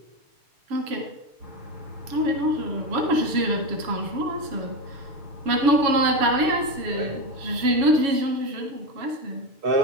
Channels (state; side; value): late; left; 7.2 ms